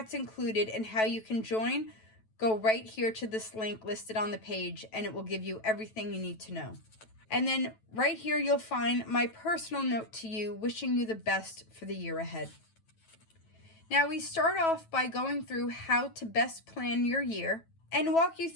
included and how you can join, go right here to this link listed on the page, and it will give you everything you need to know. And then right here, you'll find my personal note to you, wishing you the best for the year ahead. Now, we start off by going through how to best plan your year and walk you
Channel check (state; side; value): late; right; 9.1 ms